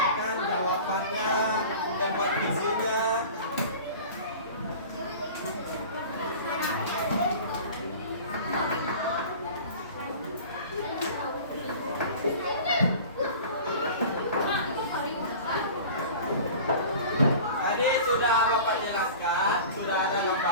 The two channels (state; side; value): inverted; both; correlation -0.39